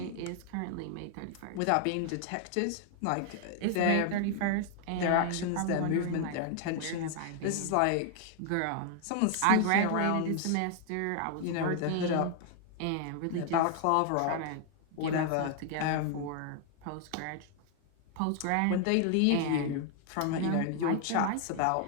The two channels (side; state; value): both; different; correlation 0.00